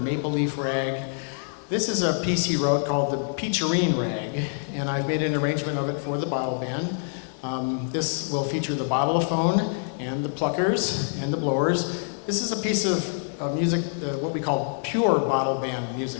Leaf Rag. This is a piece he wrote called the Peacherine Rag, and I've made an arrangement of it for the bottle band. This will feature the bottleophone and the pluckers and the blowers. This is a piece of music, what we call pure bottle band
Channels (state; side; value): silent; right; digital silence